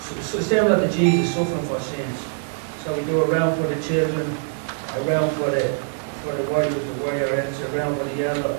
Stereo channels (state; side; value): silent; left; digital silence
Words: so similar to Jesus suffering for sins. So we do a round for the children, a round for the warriors, the warriorettes, a round for the elder,